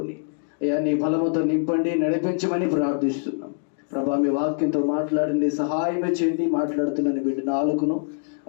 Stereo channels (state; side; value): silent; right; digital silence